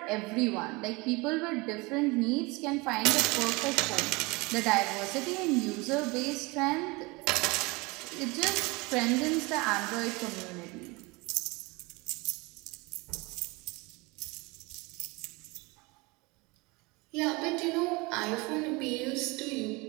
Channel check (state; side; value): quieter; left; 25.2 dB